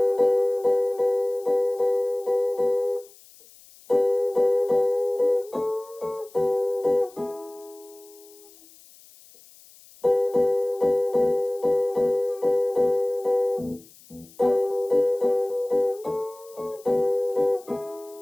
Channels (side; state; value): left; noise; hiss, 24 dB below the sound